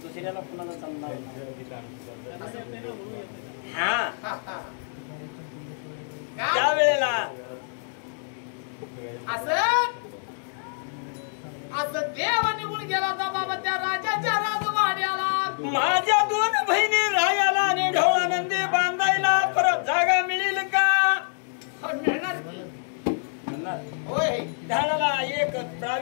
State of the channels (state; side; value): silent; right; digital silence